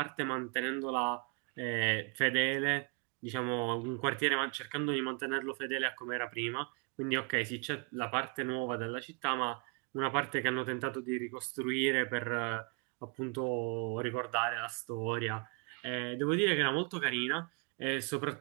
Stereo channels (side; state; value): left; quieter; 35.1 dB